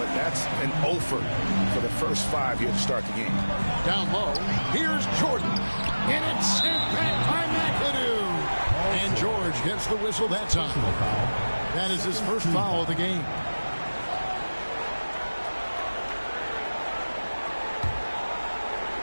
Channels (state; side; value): inverted; both; correlation -1.00